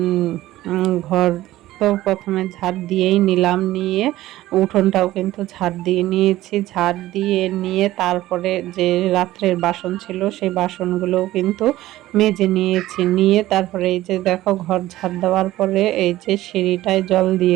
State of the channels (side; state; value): left; quieter; 15.7 dB